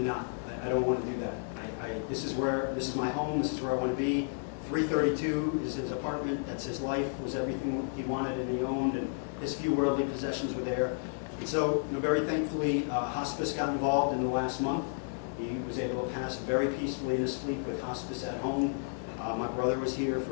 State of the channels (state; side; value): silent; right; 56 dB below the other